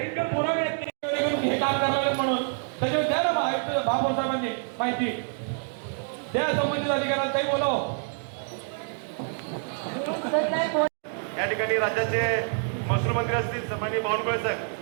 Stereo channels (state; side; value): silent; left; 60 dB below the other